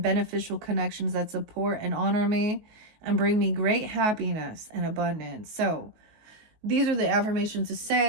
beneficial connections that support and honor me and bring me great happiness and abundance. So these are the affirmations to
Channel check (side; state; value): left; late; 19 ms